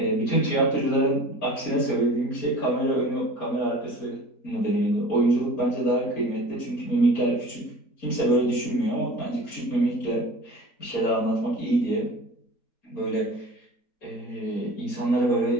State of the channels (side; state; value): right; late; 4.3 ms